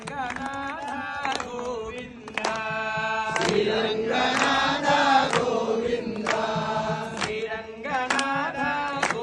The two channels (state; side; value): identical; both; correlation 1.00